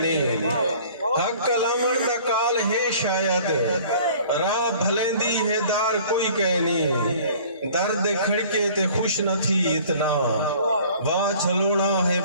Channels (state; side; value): inverted; both; correlation -0.50